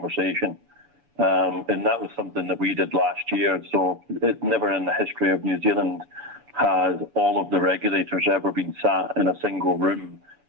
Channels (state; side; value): late; left; 7.0 ms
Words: And that was something that we did last year. So it never in the history of New Zealand has all of the regulators ever been sat in a single room